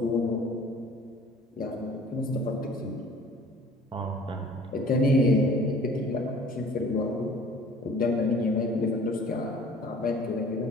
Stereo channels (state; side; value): normal; both; correlation 0.49